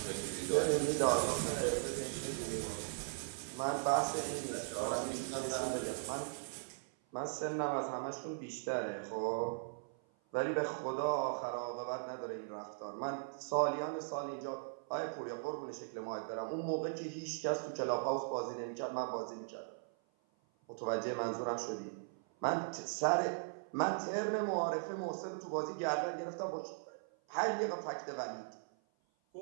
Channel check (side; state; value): left; silent; 52 dB below the other